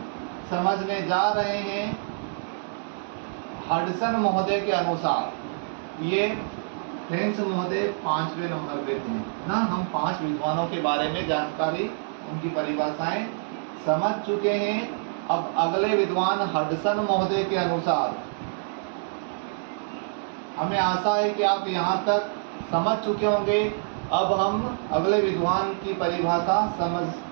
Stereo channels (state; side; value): silent; left; digital silence